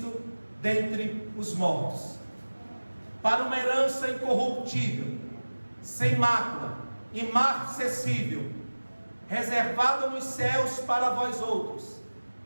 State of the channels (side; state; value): both; inverted; correlation -1.00